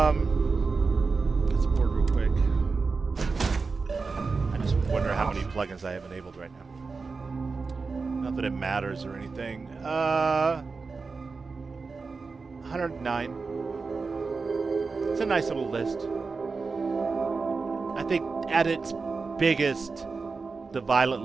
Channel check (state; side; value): quieter; left; 4.4 dB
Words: let's board real quick. I just wonder how many plugins I have enabled right now. Not that it matters or anything. 109. It's a nice little list. I think at its biggest, the Violet